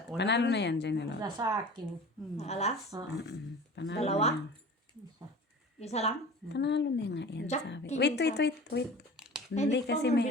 Panalo na yan, Janelo. Wala sa akin. Alas? Panalo Dalawa? na yan. Isa lang? Panalo na nga yan, Jack, sabi. king Wait. Ay, Hindi di ko kasi mo meron.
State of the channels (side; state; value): both; normal; correlation 0.39